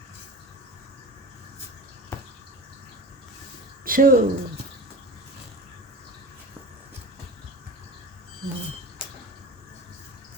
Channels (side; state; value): both; normal; correlation 0.32